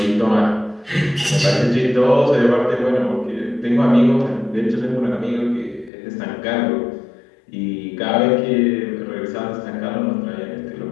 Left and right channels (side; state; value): right; drops out; at 5.9 s